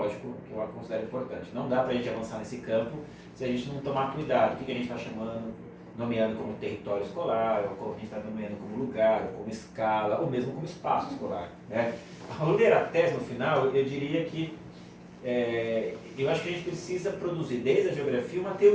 que eu considero importante. Não dá para a gente avançar nesse campo se a gente não tomar cuidado. O que a gente está nomeando como território escolar, ou como a gente está nomeando como lugar, ou como escala, ou mesmo como espaço escolar, né? Ao ler a tese no final, eu diria que eu acho que a gente precisa produzir, desde a geografia, uma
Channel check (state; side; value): identical; both; correlation 1.00